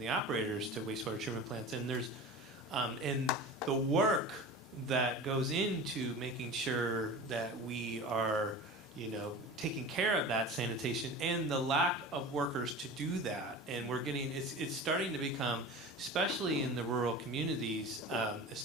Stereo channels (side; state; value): both; normal; correlation 0.34